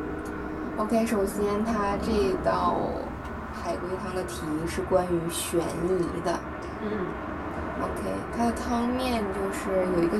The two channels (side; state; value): both; identical; correlation 1.00